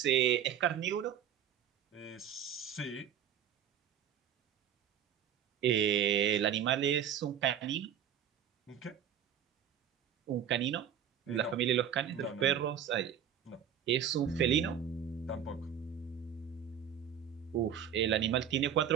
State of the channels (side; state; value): left; quieter; 9.1 dB